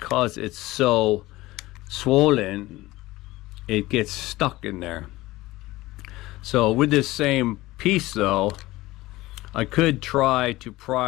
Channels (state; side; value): quieter; right; 18.5 dB